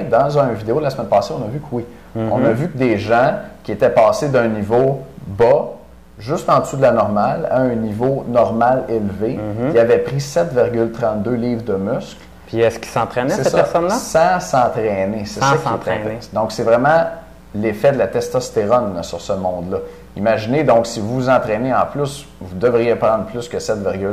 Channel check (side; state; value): both; identical; correlation 1.00